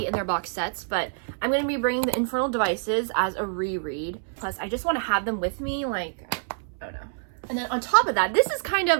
in their box sets, but I'm going to be bringing the Infernal Devices as a reread. Plus, I just want to have them with me, like, I don't know. And then on top of that, this is kind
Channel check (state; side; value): silent; left; 61 dB below the other